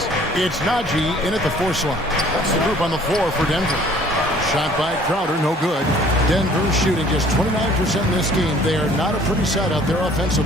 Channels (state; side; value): normal; both; correlation 0.55